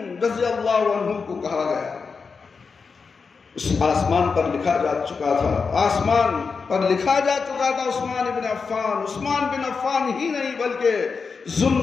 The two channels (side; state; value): right; quieter; 5.1 dB